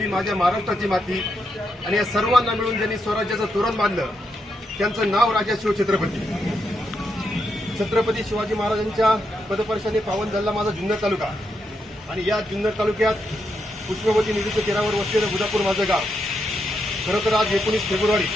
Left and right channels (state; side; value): normal; both; correlation 0.82